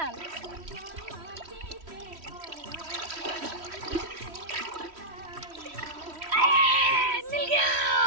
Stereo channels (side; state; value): left; late; 3.1 ms